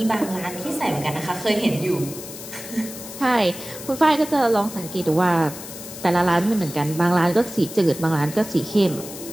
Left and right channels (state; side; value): noise; left; hiss, 12 dB below the sound